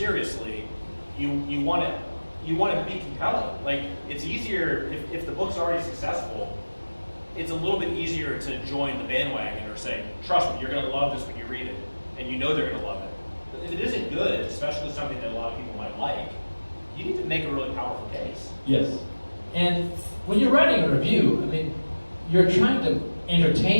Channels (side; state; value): both; inverted; correlation -1.00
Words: you want to be compelling. Like, it's easier, if the book's already successful, it's a little bit easier to join the bandwagon or say, trust me, you're going to love this when you read it. And you know they're going to love it. But if it isn't good, especially something that a lot of people might like, you need to make a really powerful case. Yes. And when you're writing a review, I mean, you're trying to